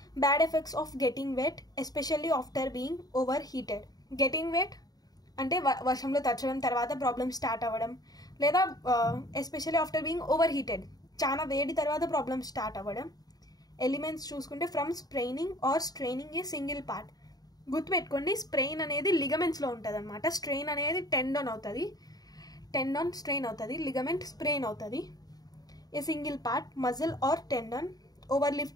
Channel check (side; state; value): right; late; 0.18 ms